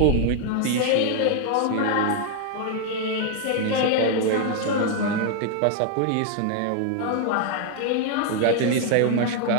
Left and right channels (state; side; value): different; both; correlation 0.00